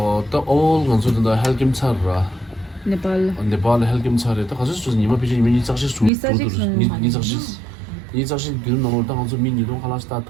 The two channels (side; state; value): left; drops out; at 6.1 s